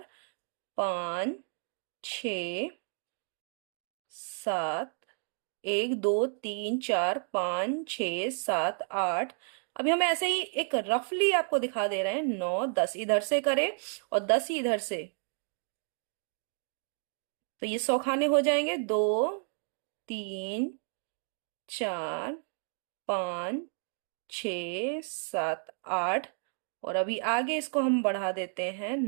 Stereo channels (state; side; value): silent; left; 57 dB below the other